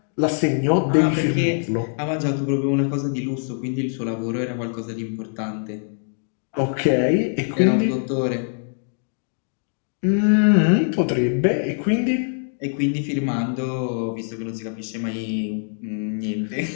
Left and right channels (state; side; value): silent; right; 63 dB below the other